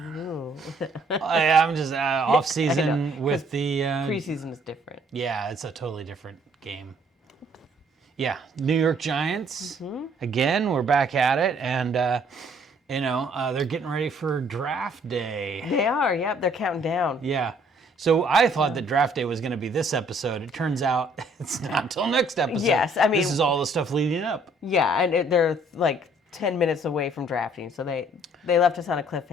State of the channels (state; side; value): normal; both; correlation 0.62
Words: Ooh. I'm just off-season with the... Pre-season is different. Yeah, it's a totally different game. Yeah, New York Giants. Again, we're back at it, and they're getting ready for draft day. They are, yep. They're counting down. Yeah. So I thought that draft day was going to be this episode. It turns out it's not until next episode. Yes, I mean... This is all the stuff leading up. Yeah, and they're like 10 minutes away from drafting, so they left us on a